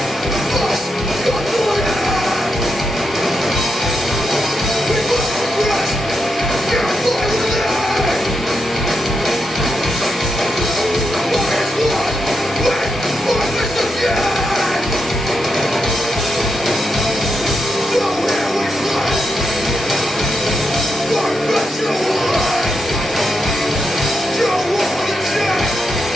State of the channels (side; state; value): both; normal; correlation 0.84